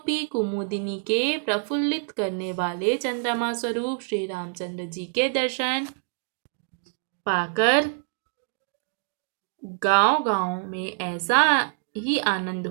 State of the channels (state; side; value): silent; left; digital silence